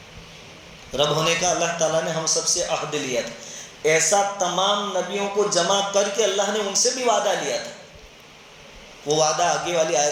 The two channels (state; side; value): identical; both; correlation 1.00